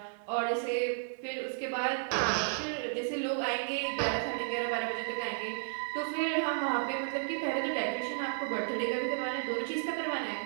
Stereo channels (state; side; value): silent; left; 56 dB below the other